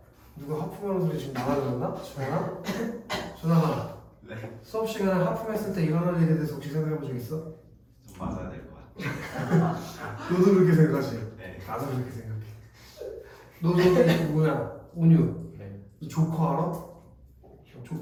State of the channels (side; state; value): both; identical; correlation 1.00